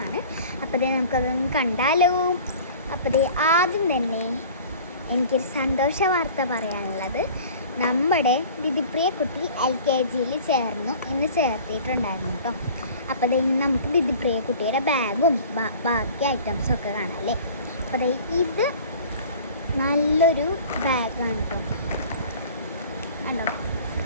ആണ്. അപ്പോൾ നമുക്കതൊന്ന് കണ്ടാലോ. അപ്പോൾ ആദ്യം തന്നെ എനിക്കൊരു സന്തോഷ വാർത്ത പറയാനുള്ളത്, നമ്മുടെ ദിദിപ്രിയ കുട്ടി LKG ഇന്ന് ചേർത്തിട്ടുണ്ടായിരുന്നു കേട്ടോ. അപ്പോൾ ഇന്ന് നമുക്ക് ദിദിപ്രിയ കുട്ടിയുടെ ബാഗും ബാക്കി ഐറ്റംസൊക്കെ കാണാം അല്ലേ. അപ്പോൾ ഇത് നല്ലൊരു ബാഗാണ് കേട്ടോ. കണ്ടോ,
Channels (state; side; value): inverted; both; correlation -0.44